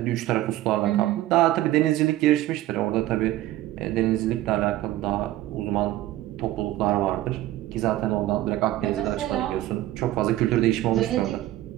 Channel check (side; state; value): left; quieter; 15.1 dB